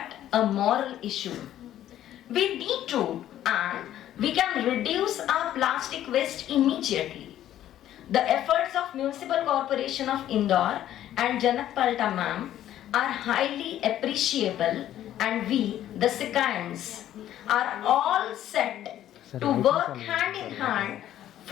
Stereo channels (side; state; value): right; quieter; 12.1 dB